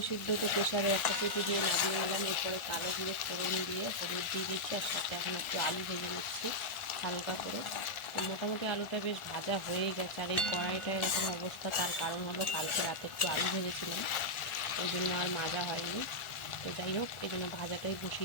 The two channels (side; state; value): right; late; 1.4 ms